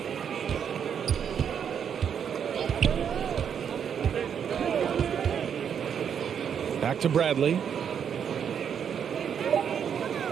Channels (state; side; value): quieter; left; 7.9 dB